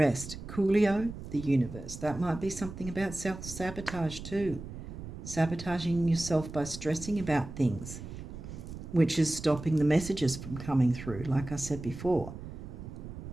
Coolio, the universe. That might be something about self-sabotage too. Sabotaging yourself by stressing about things, which is stopping the messages from coming through, like I said before.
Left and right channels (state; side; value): noise; right; rumble, 11 dB below the sound